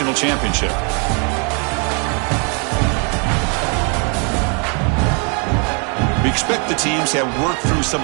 championship. We expect the teams to have worked through some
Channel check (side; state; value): left; quieter; 36.5 dB